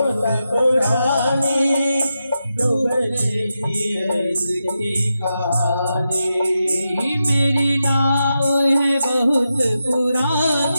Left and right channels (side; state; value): both; inverted; correlation -0.88